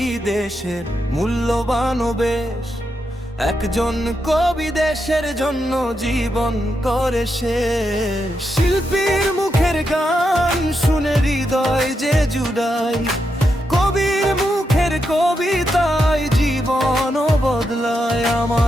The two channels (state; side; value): normal; both; correlation 0.84